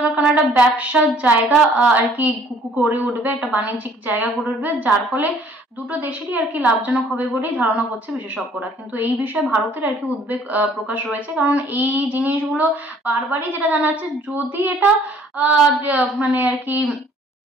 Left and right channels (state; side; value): normal; both; correlation 0.58